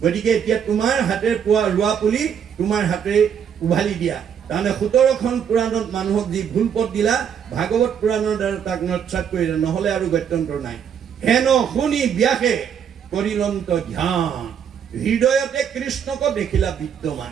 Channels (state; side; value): quieter; left; 8.0 dB